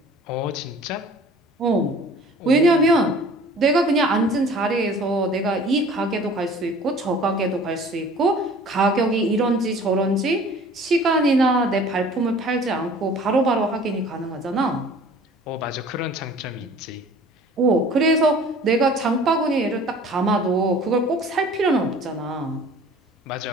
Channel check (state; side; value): normal; both; correlation 0.48